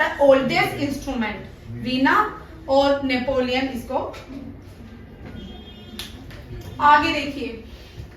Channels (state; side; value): identical; both; correlation 1.00